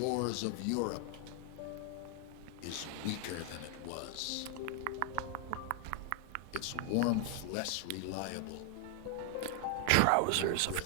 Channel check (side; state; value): both; different; correlation 0.00